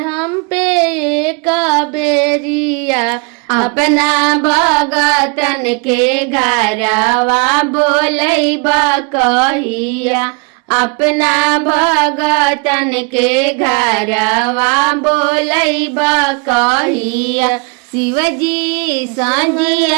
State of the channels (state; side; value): quieter; left; 32.2 dB